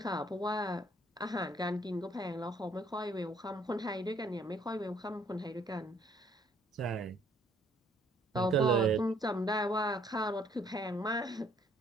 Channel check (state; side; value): normal; both; correlation 0.63